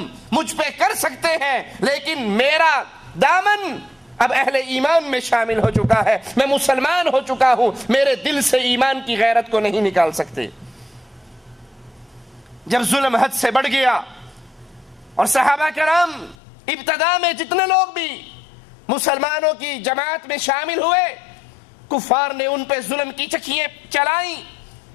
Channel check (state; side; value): drops out; right; at 16.4 s